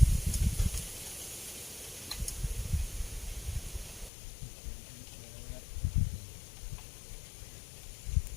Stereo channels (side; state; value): right; drops out; at 4.1 s